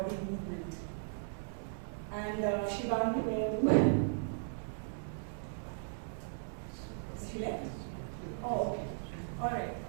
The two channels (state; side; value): silent; left; 53 dB below the other